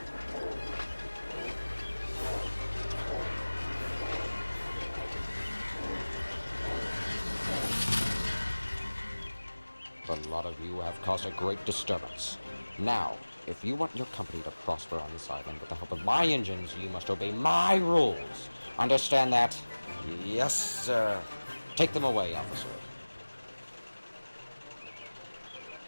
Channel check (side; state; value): both; inverted; correlation -1.00